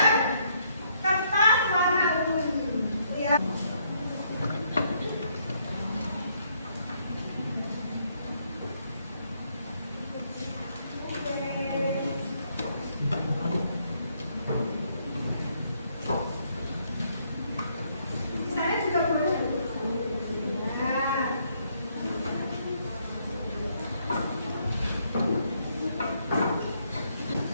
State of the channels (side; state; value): both; inverted; correlation -0.71